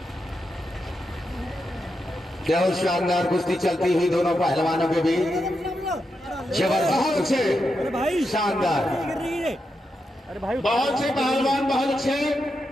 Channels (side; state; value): both; normal; correlation 0.86